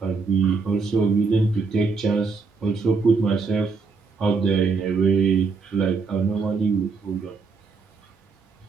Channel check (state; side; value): quieter; left; 4.7 dB